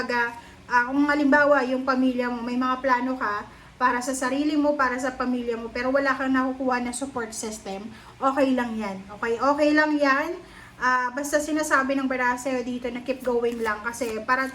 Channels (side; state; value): both; identical; correlation 1.00